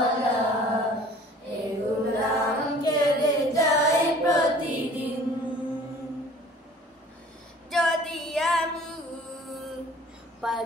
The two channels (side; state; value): both; normal; correlation 0.49